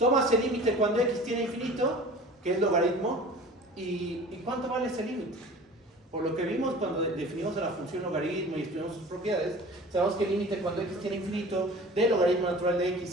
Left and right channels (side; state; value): both; normal; correlation 0.42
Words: el límite cuando X tiende a infinito, que es logaritmo, y ¿cuánto vale ese límite? Por lo que vimos cuando definimos la función logaritmo y estudiamos sus propiedades, sabemos que el límite cuando X tiende a infinito de logaritmo natural de